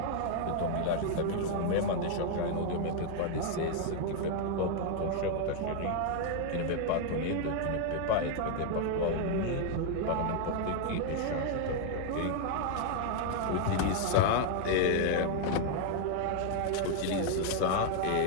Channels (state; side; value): different; both; correlation 0.00